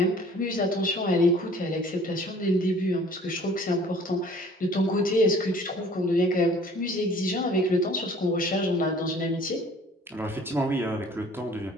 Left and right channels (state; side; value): normal; both; correlation 0.52